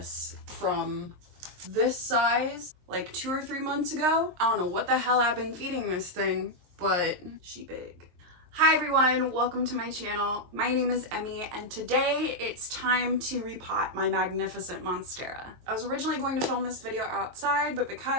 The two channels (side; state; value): left; late; 23 ms